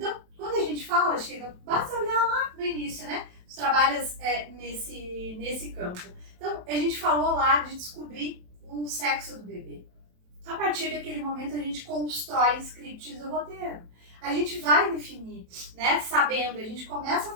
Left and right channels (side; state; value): left; late; 27 ms